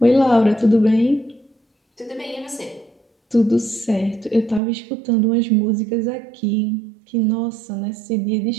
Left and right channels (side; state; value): left; drops out; at 4.6 s